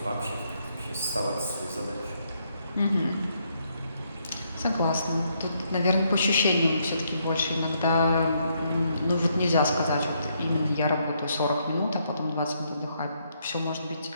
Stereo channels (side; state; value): both; inverted; correlation -0.74